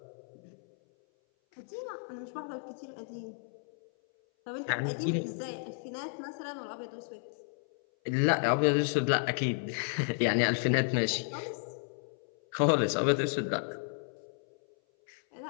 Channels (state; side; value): silent; right; 56 dB below the other